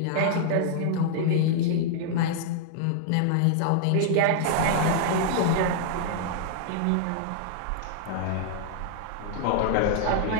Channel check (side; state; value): both; different; correlation -0.01